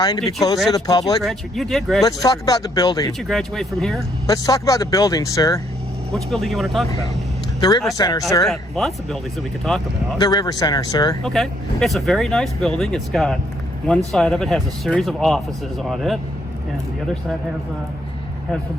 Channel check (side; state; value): both; normal; correlation 0.70